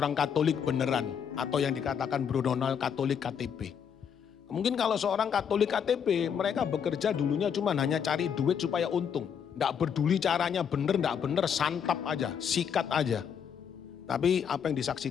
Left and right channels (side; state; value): right; quieter; 7.6 dB